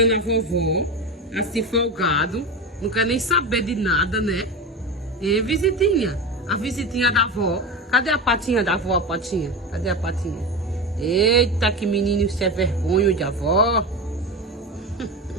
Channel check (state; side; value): normal; both; correlation 0.23